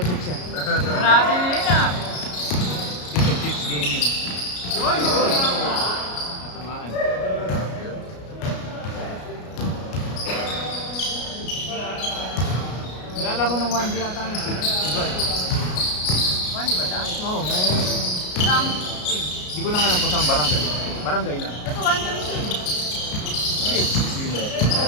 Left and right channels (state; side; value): late; right; 33 ms